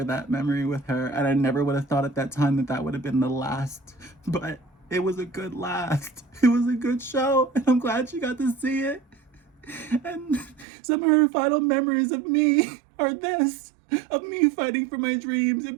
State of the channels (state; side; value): drops out; left; at 10.7 s